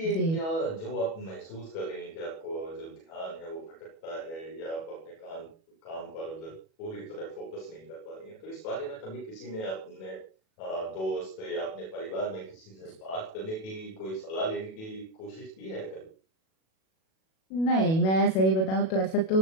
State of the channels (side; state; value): right; late; 37 ms